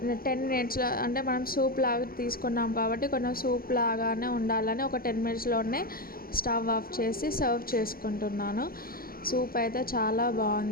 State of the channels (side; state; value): right; late; 0.43 ms